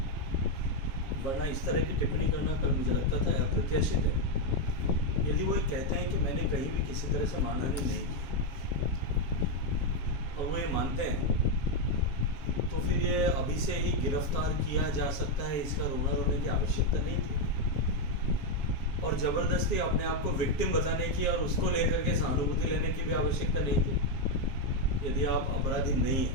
वरना इस तरह की टिप्पणी करना कल मुझे लगता था अप्रत्याशित है। यदि वो कहते हैं कि मैंने कहीं भी किसी तरह से मानहानि नहीं की और वो ये मानते हैं, तो फिर ये अभी से ही गिरफ्तार किया जा सकता है, इसका रोना रोने की आवश्यकता नहीं थी। और ज़बरदस्ती अपने आप को विक्टिम बताने की और उसको लेकर के सहानुभूति लेने की भी आवश्यकता नहीं थी। यदि आप अपराधी नहीं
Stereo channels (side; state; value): right; late; 7.3 ms